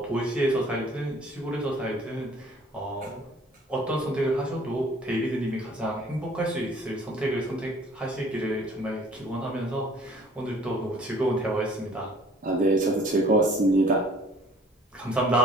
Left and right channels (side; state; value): both; normal; correlation 0.54